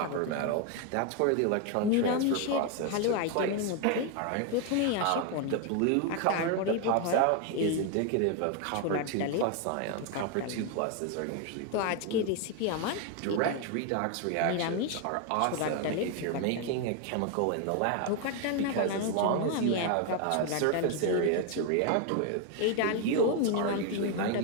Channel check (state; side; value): different; both; correlation 0.01